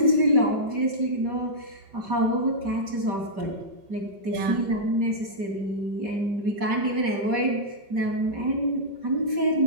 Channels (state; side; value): late; left; 5.2 ms